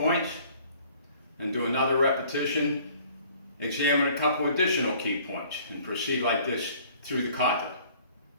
and do another repetition, examine a couple additional key points, and proceed like this through the kata.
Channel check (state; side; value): inverted; both; correlation -0.54